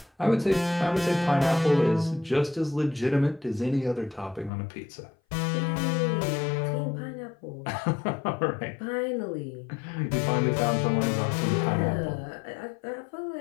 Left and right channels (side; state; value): right; drops out; at 4.5 s